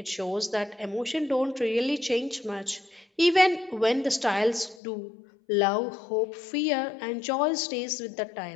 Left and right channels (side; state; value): right; drops out; at 4.8 s